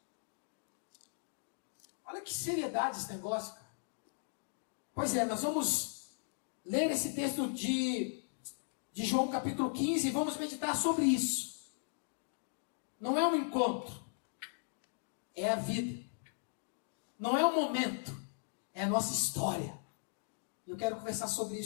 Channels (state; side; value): silent; right; digital silence